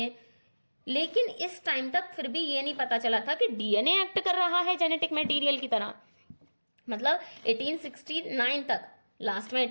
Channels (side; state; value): both; inverted; correlation -1.00